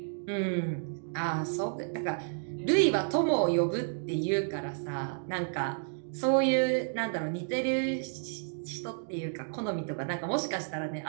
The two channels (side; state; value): left; silent; digital silence